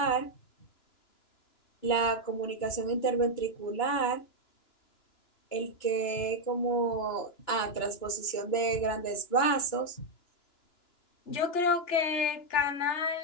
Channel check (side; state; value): right; late; 2.9 ms